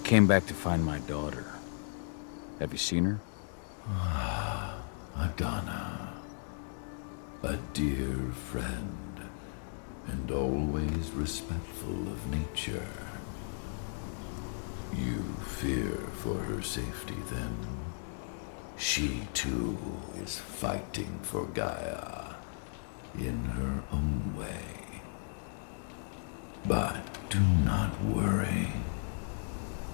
back to find my daughter. Have you seen her? Adana, a dear friend, and always respectful of nature. You fear for her safety, then? She, too, is fighting for Gaia, in her own way. But do not worry.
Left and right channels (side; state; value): right; silent; digital silence